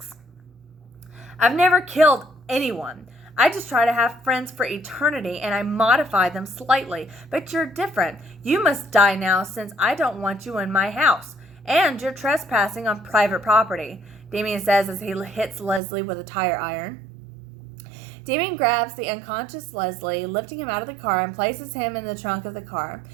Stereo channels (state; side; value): drops out; left; at 15.8 s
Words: "I've never killed anyone. I just try to have friends for eternity, and I modify them slightly. But you're different. You must die now since I don't want you in my house. And you're trespassing on private property," Damien says as he hits Leslie with a tire iron. Damien grabs the unconscious Leslie, lifting him out of the car, and places him in the trunk of the car.